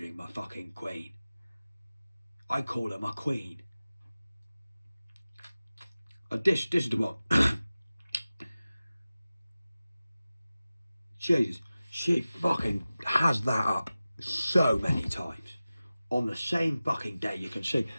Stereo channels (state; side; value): inverted; both; correlation -0.96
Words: my fucking queen. I call her my queen. This is the one. Jesus, she fucking has that up so many times. On the same fucking day, you can see